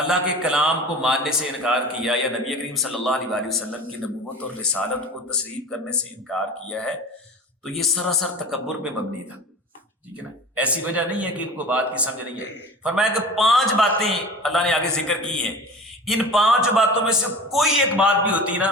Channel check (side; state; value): both; normal; correlation 0.36